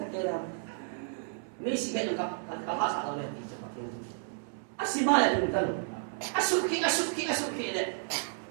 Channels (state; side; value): silent; left; 56 dB below the other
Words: ta kera mi si ke ka hasa da le ti cha patin asima ya dun tan asuki le